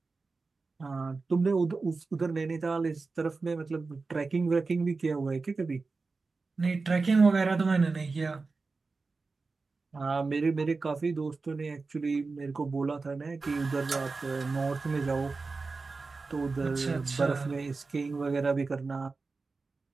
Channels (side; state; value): left; quieter; 4.0 dB